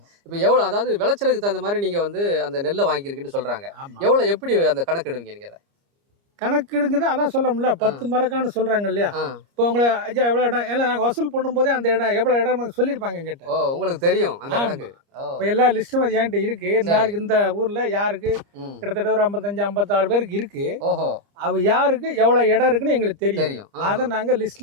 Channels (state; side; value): late; left; 30 ms